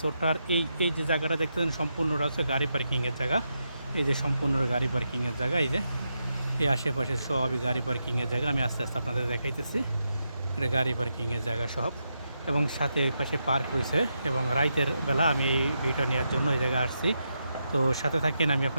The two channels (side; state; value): both; inverted; correlation -0.84